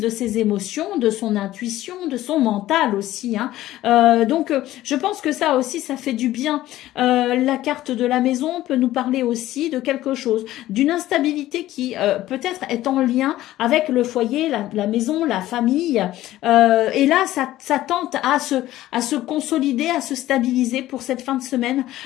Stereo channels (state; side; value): quieter; right; 15.0 dB